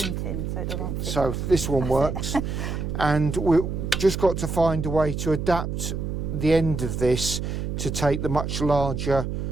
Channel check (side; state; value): right; noise; hum, 3 dB below the sound